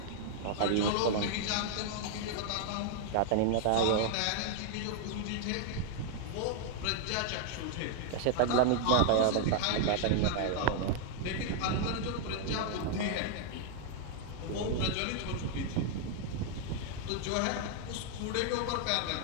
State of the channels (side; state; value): both; different; correlation -0.01